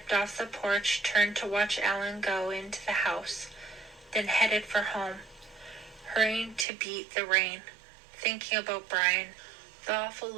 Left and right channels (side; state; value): left; drops out; at 6.7 s